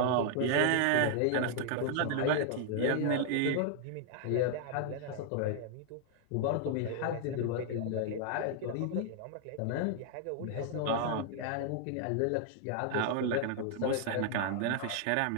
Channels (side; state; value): both; different; correlation 0.00